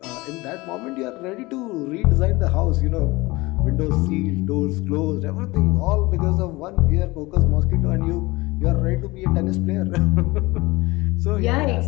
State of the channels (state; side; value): quieter; right; 21.8 dB